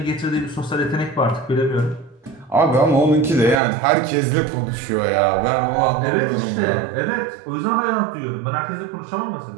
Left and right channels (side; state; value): left; drops out; at 3.6 s